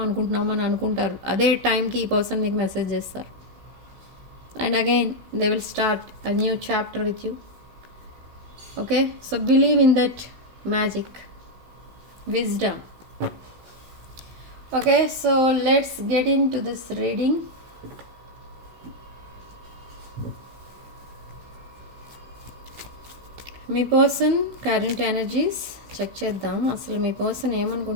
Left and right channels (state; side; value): late; left; 16 ms